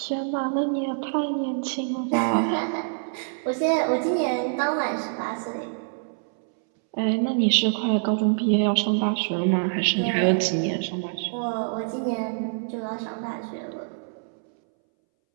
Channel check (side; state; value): left; silent; 61 dB below the other